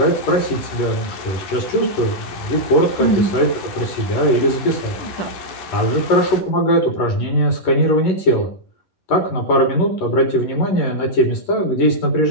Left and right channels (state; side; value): late; right; 11 ms